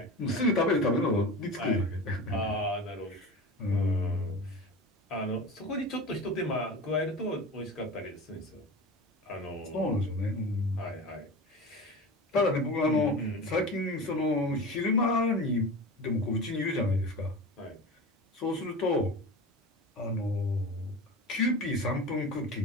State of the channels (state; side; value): normal; both; correlation 0.31